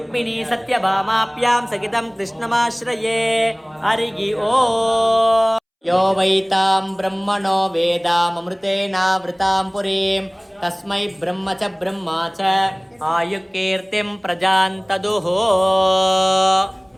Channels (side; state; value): both; identical; correlation 1.00